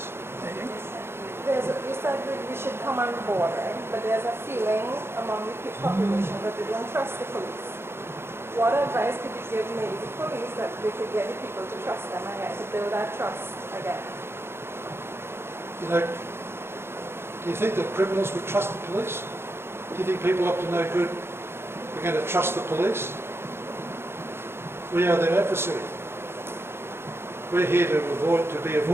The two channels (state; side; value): late; left; 0.12 ms